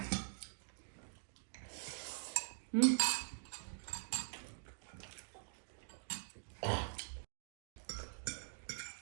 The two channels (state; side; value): silent; left; digital silence